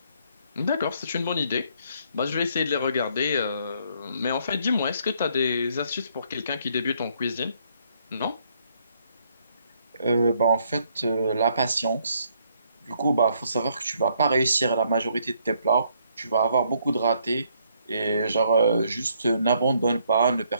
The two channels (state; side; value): inverted; both; correlation -0.69